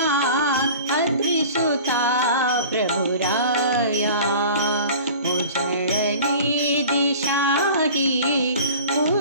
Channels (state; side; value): inverted; both; correlation -0.41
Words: अत्रिसुता प्रभुराया। उजळली दिशाही